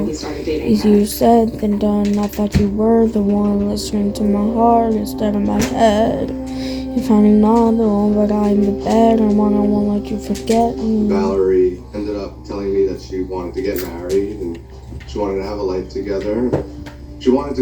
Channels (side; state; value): both; identical; correlation 1.00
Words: Easier said than done. I thought you were the one listening to my heart instead of my head. You're finding another one, but I'm the better one. I won't let you forget me. Valerie ended up telling me that she wanted to get married and she wanted to have a life together. She wanted to